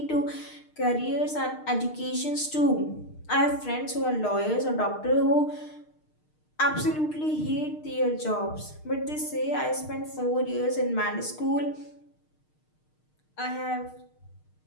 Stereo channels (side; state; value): right; late; 6.5 ms